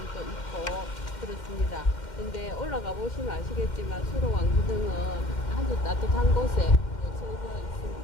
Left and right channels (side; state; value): right; late; 2.1 ms